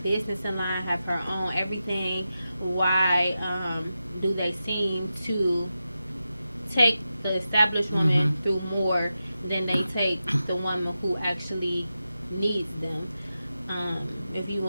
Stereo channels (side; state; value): both; inverted; correlation -0.91